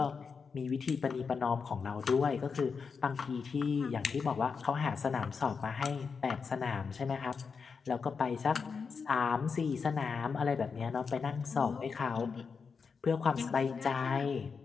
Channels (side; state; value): right; quieter; 5.5 dB